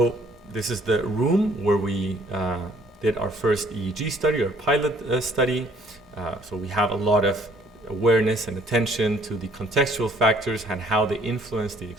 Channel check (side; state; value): both; normal; correlation 0.60